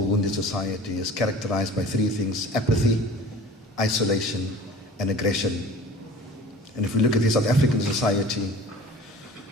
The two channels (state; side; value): normal; both; correlation 0.43